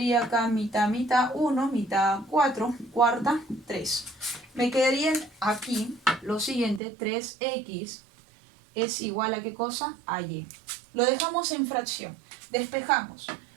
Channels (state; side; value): drops out; left; at 6.8 s